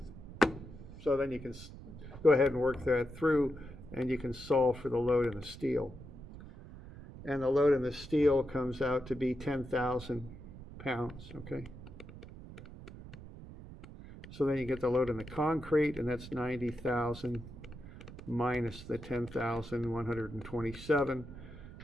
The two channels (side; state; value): right; noise; rumble, 14 dB below the sound